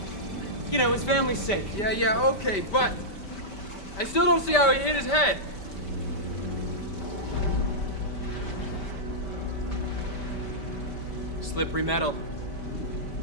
You know, his family's sake. Yeah, okay, but I still don't see how he hit his head. Slippery metal.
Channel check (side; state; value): right; late; 5.1 ms